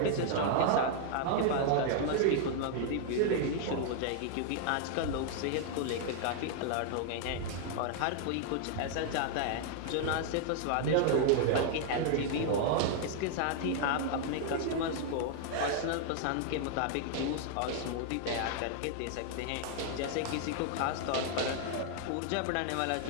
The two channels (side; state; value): both; different; correlation 0.00